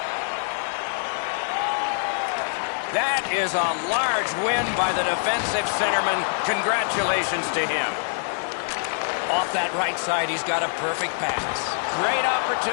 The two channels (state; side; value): silent; right; 58 dB below the other